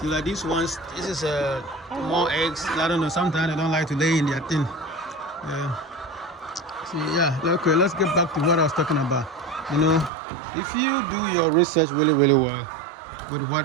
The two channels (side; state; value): left; drops out; at 10.1 s